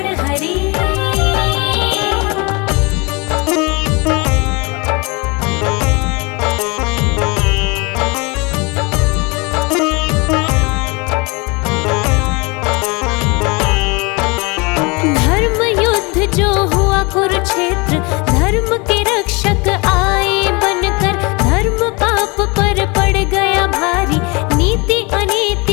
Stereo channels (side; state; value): right; quieter; 28.1 dB